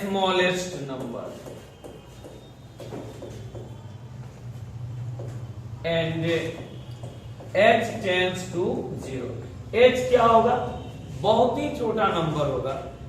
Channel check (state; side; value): identical; both; correlation 1.00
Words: smallest number and h tends to 0। h क्या होगा? बहुत ही छोटा नंबर होगा